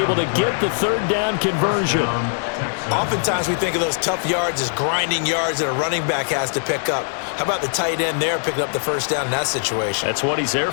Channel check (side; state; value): right; silent; digital silence